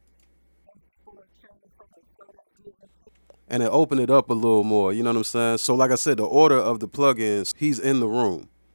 And it opened it up a little more, you know what I'm saying? So like I said, the order of the plugins, he's in the room,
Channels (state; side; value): inverted; both; correlation -1.00